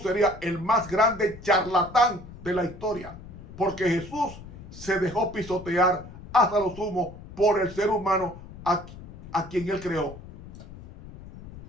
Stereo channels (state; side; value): noise; left; rumble, 16 dB below the sound